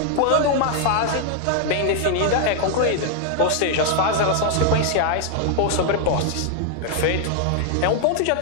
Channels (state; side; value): different; both; correlation 0.00